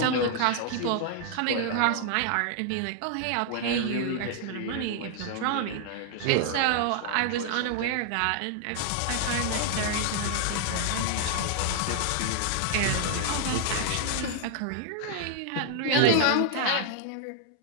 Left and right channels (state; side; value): different; both; correlation -0.01